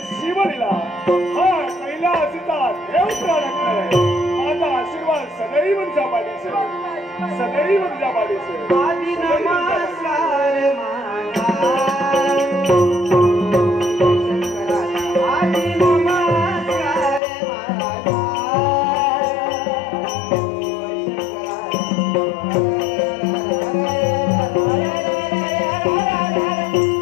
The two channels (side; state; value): right; drops out; at 17.2 s